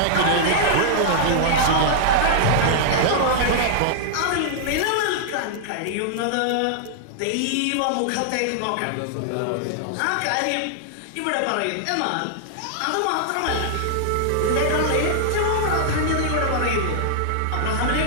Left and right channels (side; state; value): both; different; correlation -0.01